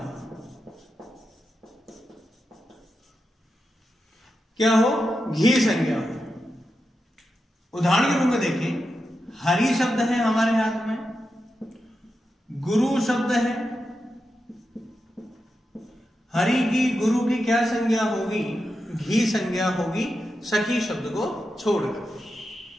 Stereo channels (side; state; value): both; normal; correlation 0.89